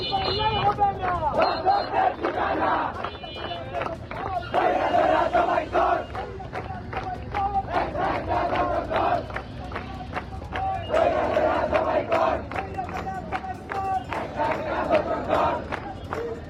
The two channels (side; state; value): both; identical; correlation 1.00